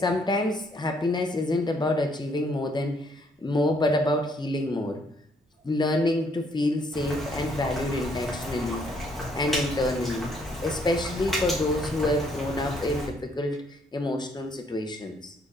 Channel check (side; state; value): both; normal; correlation 0.68